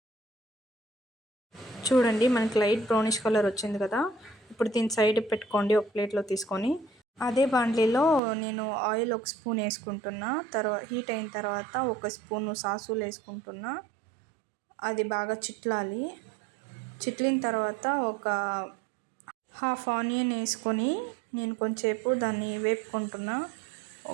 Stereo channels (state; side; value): drops out; left; at 8.2 s